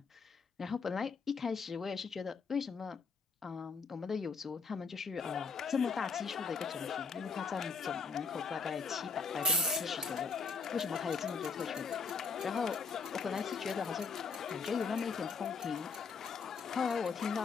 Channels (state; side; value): quieter; right; 5.0 dB